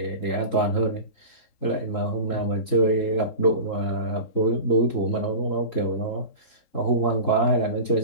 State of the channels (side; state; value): right; late; 3.7 ms